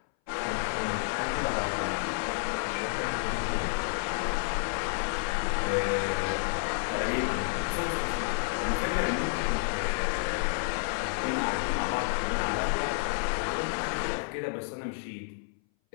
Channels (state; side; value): silent; right; 58 dB below the other